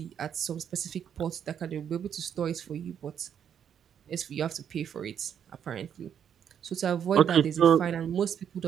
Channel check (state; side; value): quieter; left; 8.6 dB